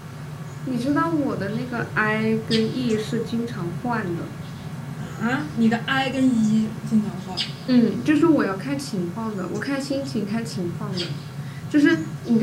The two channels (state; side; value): identical; both; correlation 1.00